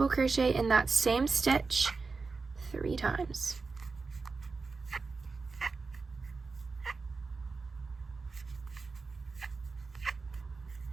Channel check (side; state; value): left; quieter; 4.3 dB